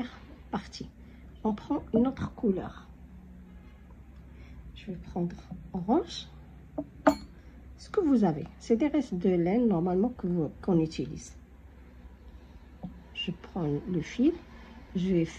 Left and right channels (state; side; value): identical; both; correlation 1.00